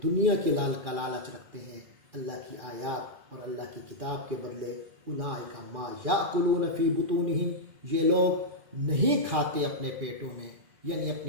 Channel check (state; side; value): late; left; 2.4 ms